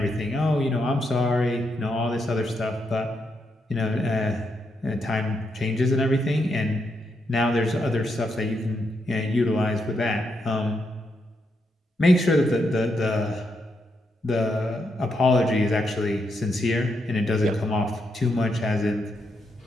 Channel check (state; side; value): normal; both; correlation 0.81